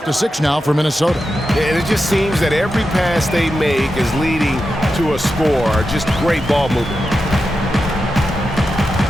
to 6 now for Minnesota. And it just seems that every pass they make is leading to a score. Just great ball movement.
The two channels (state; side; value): normal; both; correlation 0.90